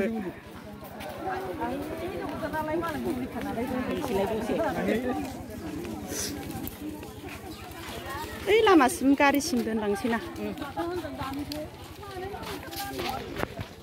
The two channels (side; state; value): both; identical; correlation 1.00